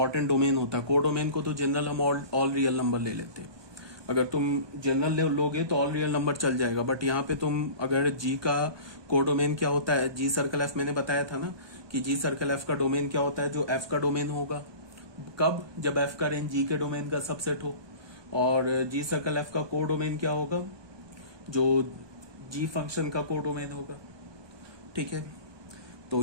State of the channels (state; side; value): late; left; 1.2 ms